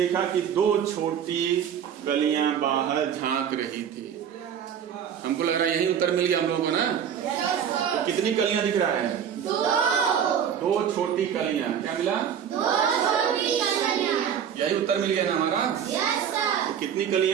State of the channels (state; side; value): quieter; left; 8.5 dB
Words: कि 2 छोटी कलियां बाहर झांक रही थी। हमको लग रहा है यही उत्तर मिल गया हम लोगों को ना? तो कितनी कलियां दिख रहा है? दो छोटी कलियां। क्या मिला? दो छोटी कलियां। यही उत्तर मिल गया ना हमारा। Yes sir. तो कितनी